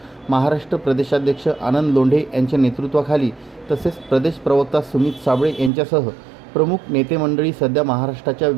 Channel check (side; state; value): left; drops out; at 5.7 s